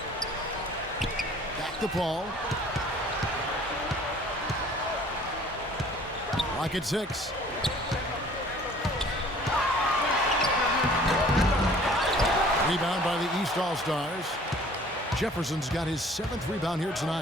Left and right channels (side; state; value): both; normal; correlation 0.52